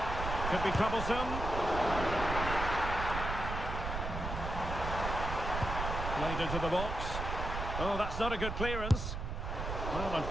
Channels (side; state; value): right; noise; rumble, 4 dB below the sound